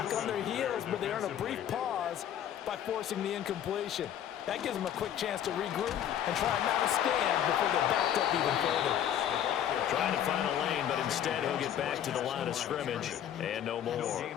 on their heels, but they earn a brief pause by forcing the incompletion. That gives them a quick chance to regroup and try and mount a stand before they're backed up even further. Trying to find a lane, but instead he'll get back to the line of scrimmage and no more.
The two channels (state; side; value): quieter; right; 10.1 dB